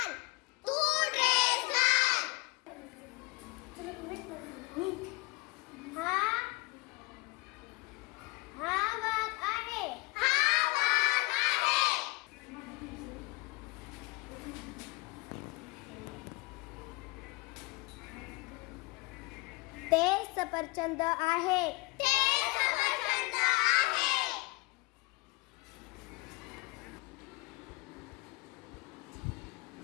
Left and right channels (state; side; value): quieter; right; 24.7 dB